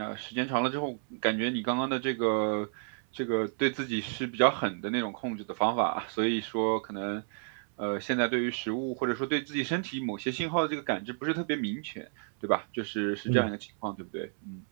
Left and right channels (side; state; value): left; silent; 57 dB below the other